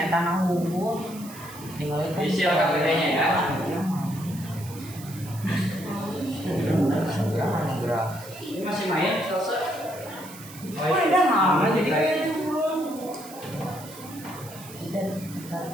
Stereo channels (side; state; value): right; noise; hiss, 17 dB below the sound